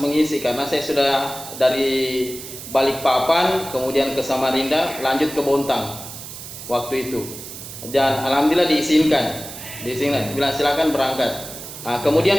karena saya sudah dari Balikpapan kemudian ke Samarinda lanjut ke Bontang waktu itu. Dan alhamdulillah diizinkan, bilang silakan berangkat.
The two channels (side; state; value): right; noise; hiss, 12 dB below the sound